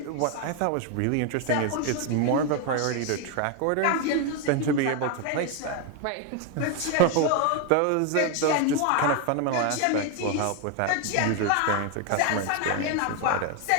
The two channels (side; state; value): both; different; correlation 0.01